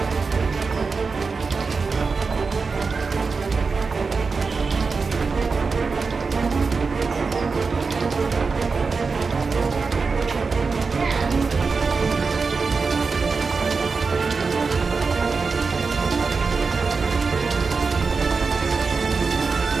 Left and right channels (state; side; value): quieter; left; 4.6 dB